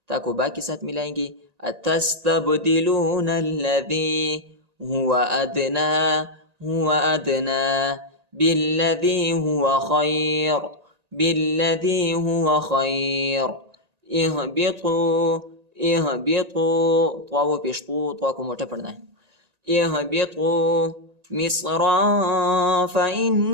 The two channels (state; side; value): late; left; 1.9 ms